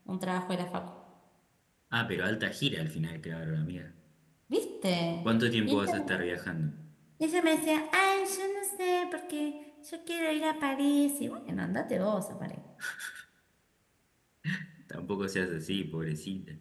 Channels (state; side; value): identical; both; correlation 1.00